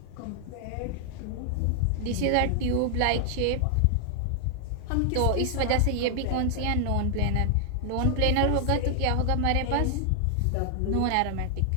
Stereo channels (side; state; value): both; different; correlation 0.00